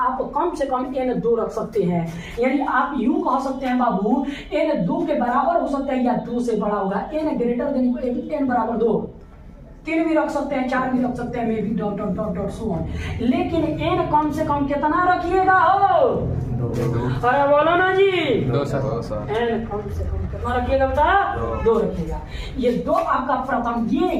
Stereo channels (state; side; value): identical; both; correlation 1.00